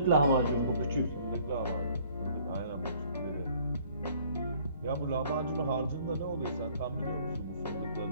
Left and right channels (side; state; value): both; inverted; correlation -0.58